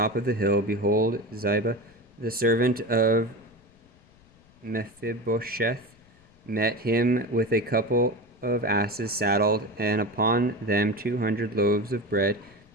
of the hill, behold, Ziba, the servant of Mephibosheth, met him with a couple of asses saddled, and upon them 200 loaves of bread,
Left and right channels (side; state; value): left; noise; rumble, 29 dB below the sound